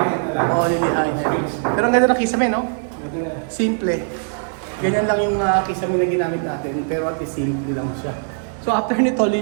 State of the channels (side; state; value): left; silent; 65 dB below the other